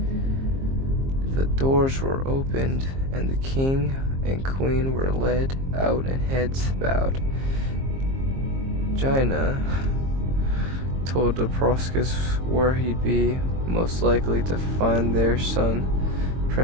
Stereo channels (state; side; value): late; left; 22 ms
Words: The doors were opened, and the king and queen were led out and heads bowed. Jaina told the Proscus where he'd be most likely to find their son,